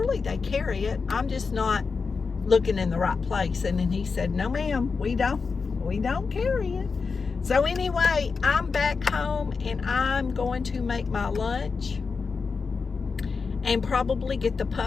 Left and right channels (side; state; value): right; quieter; 4.9 dB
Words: they carry it. I'm just not looking in the right place. And then he said, no ma'am, we don't carry it. So anyway, I'm back home, and I'm going to make my lunch and probably get the